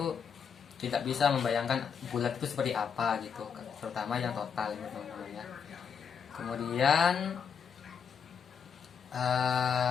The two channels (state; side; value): quieter; right; 6.8 dB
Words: tidak bisa membayangkan bulat itu seperti apa gitu, terutama yang total gitu teman-teman ya. Kemudian